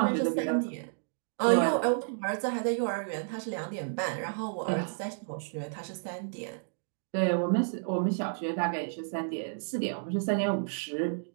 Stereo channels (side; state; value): left; silent; digital silence